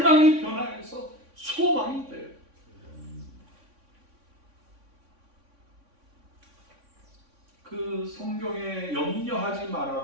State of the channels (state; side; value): late; left; 3.6 ms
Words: 변화해서 소망이 돼요. 그 성경에 염려하지